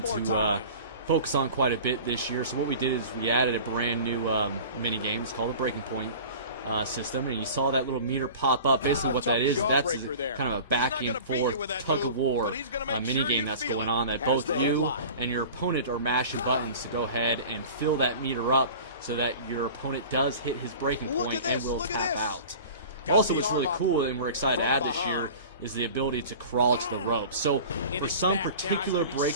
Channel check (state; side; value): inverted; both; correlation -0.39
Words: to focus on quite a bit this year. So what we did is we added a brand new mini game. It's called the Breaking Point system, and you saw that little meter pop up. Basically what that is, that's kind of a back and forth tug-of-war mini game that's going on, that both you and your opponent are mashing buttons to go ahead and fill that meter up so that your opponent does hit his breaking point and will tap out. Also, what's really cool and we're excited to add this year is the ability to crawl to the ropes. So for some particular